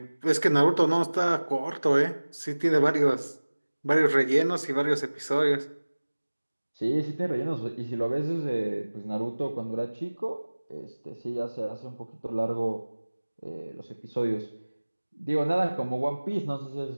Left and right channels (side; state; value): both; inverted; correlation -1.00